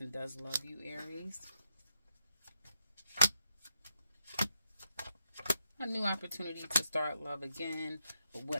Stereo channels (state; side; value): inverted; both; correlation -0.82